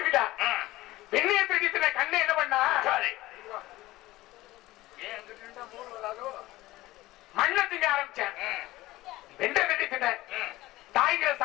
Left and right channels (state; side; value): quieter; right; 17.8 dB